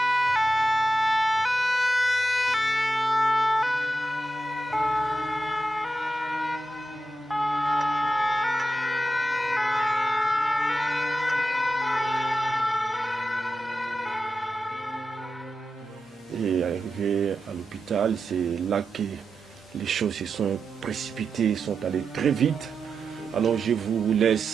Et arrivé à l'hôpital, c'est là que les choses se sont précipitées, sont allées très vite. Alors je vous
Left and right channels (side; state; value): both; normal; correlation 0.89